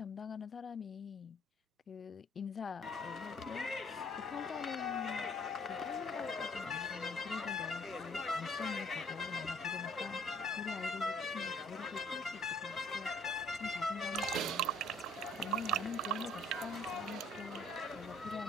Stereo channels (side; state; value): both; normal; correlation 0.59